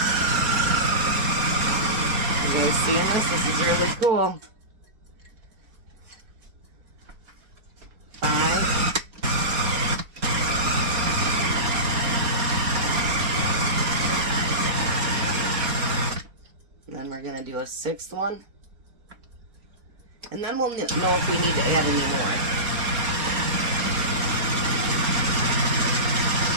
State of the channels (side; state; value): left; late; 4.3 ms